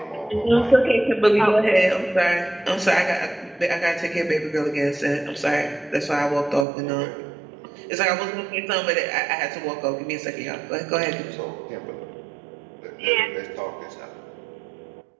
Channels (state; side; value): drops out; left; at 6.7 s